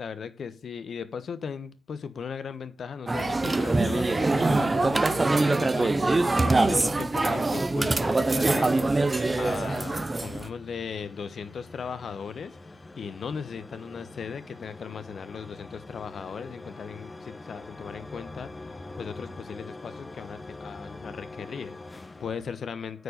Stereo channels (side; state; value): both; normal; correlation 0.94